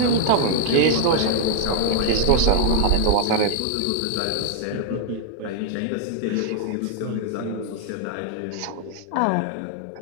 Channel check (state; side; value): different; both; correlation 0.00